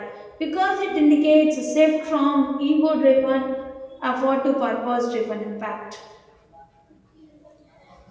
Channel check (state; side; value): identical; both; correlation 1.00